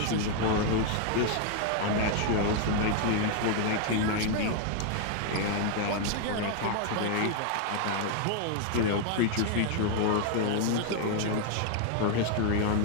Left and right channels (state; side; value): different; both; correlation 0.00